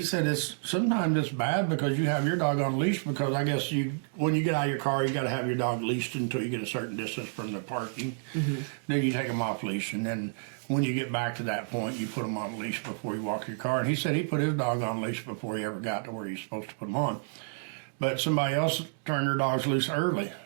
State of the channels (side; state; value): left; silent; digital silence